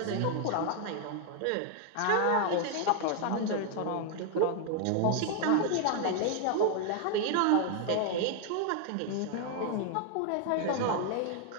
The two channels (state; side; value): different; both; correlation 0.00